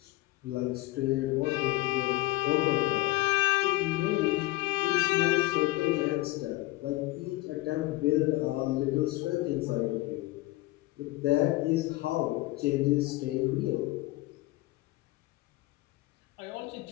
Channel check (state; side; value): quieter; right; 19.4 dB